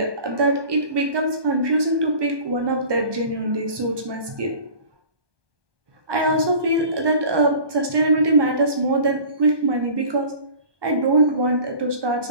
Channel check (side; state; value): left; late; 1.2 ms